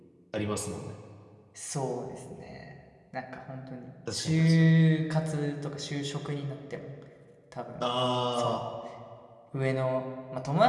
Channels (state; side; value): identical; both; correlation 1.00